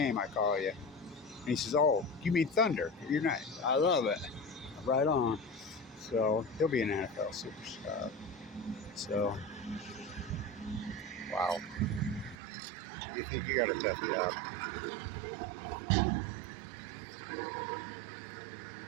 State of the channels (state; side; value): drops out; left; at 12.4 s